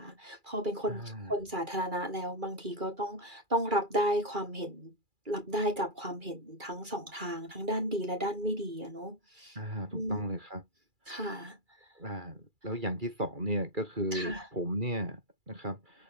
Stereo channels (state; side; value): late; left; 2.3 ms